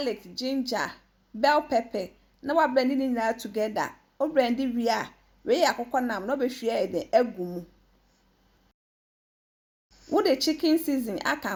ginger, bell pepper. Now I blending it now together. O blend we are. We akoko nam no be hwe de agumu. Wo the chicken season aka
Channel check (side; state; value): both; identical; correlation 1.00